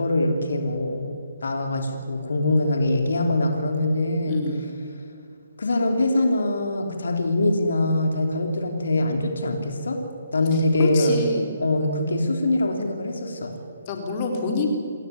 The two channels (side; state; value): both; inverted; correlation -0.79